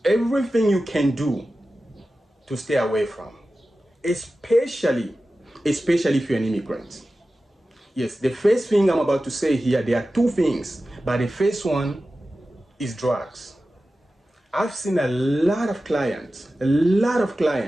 everything you can do to stay away from, especially if you're an immigrant. Yes, the first thing I'm about to say here, there are two things, but the first one is drugs. I've seen a lot of clients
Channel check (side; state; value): both; normal; correlation 0.94